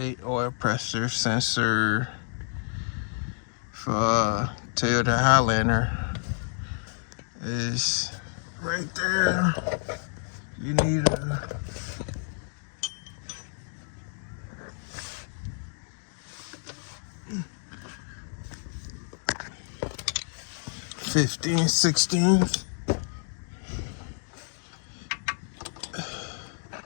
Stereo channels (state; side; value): silent; right; 59 dB below the other